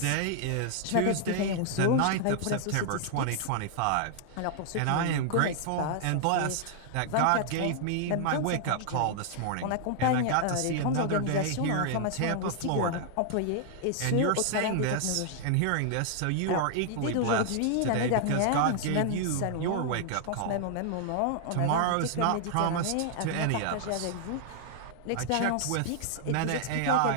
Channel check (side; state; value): both; different; correlation -0.01